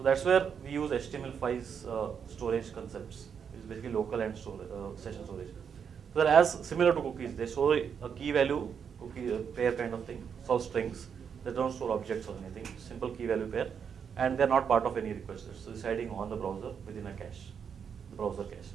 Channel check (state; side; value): quieter; left; 7.1 dB